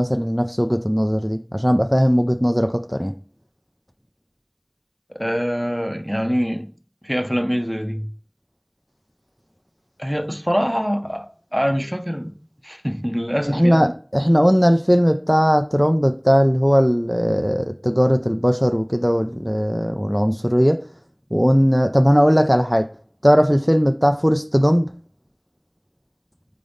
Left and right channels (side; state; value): both; identical; correlation 1.00